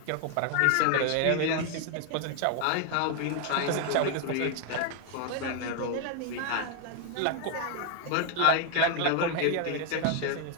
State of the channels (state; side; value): different; both; correlation 0.00